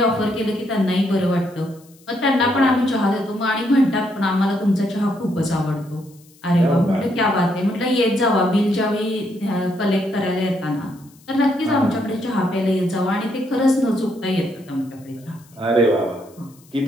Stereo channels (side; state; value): left; noise; hiss, 28 dB below the sound